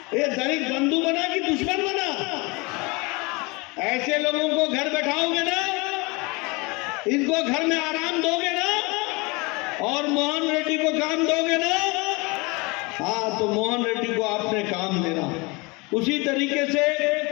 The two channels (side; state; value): right; quieter; 26.8 dB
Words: ये दलित बंधु बना कि दुश्मन बना? ऐसे लोगों को घर बैठाओगे ना, इनको घर में आराम दोगे ना, और मोहन रेड्डी को काम दोगे ना? हाँ, तो मोहन रेड्डी को आपने काम देना। उसी तरीके से